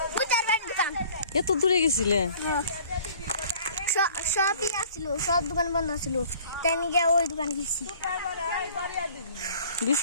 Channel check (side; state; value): both; inverted; correlation -0.51